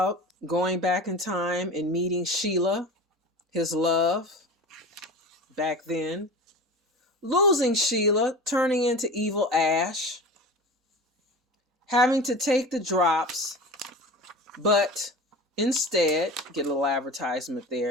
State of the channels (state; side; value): normal; both; correlation 0.33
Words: going back in time and meeting Sheila, his love, back then. Losing Sheila, turning into evil Ash. Having to take the drops, but instead, get a little advertisement